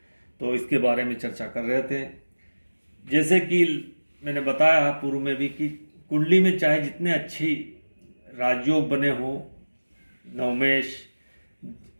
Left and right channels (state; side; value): inverted; both; correlation -1.00